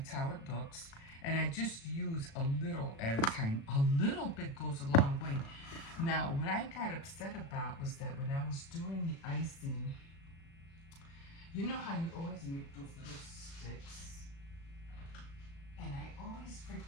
how it looks. And I just use a little at a time. A little bit goes a long way. Now, what I got upset about was that when I was doing the icing, you know how you always make those little sticks? And I always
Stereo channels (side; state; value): right; late; 36 ms